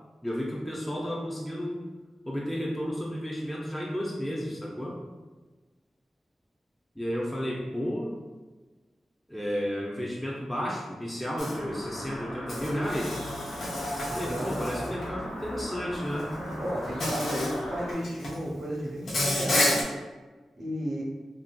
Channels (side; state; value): both; normal; correlation 0.90